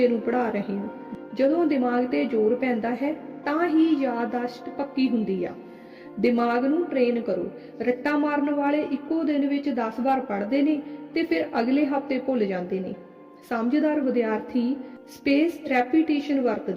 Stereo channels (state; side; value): identical; both; correlation 1.00